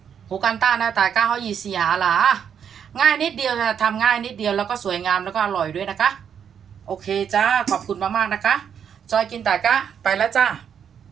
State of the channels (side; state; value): left; quieter; 8.1 dB